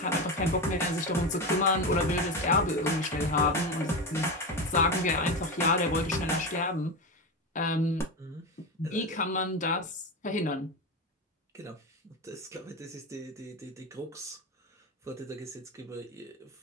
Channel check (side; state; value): both; normal; correlation 0.18